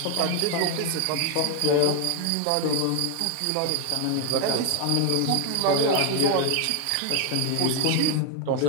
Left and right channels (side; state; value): both; different; correlation 0.01